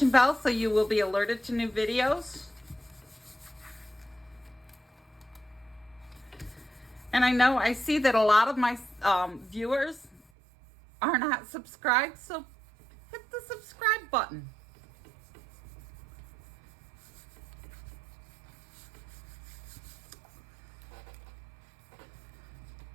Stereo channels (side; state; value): left; drops out; at 10.2 s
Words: bell so you will be alerted to new videos. And I know I see that a lot of my viewers are not subscribed, so hit the subscribe button.